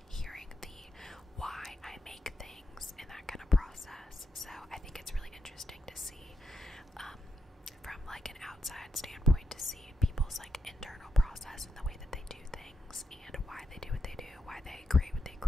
hearing the why I make things and that kind of process. So I think it's really interesting to see from like an outside standpoint, to see people's like internal process and the way that they do things, and why they do what they do, why they create what they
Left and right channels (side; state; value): both; normal; correlation 0.85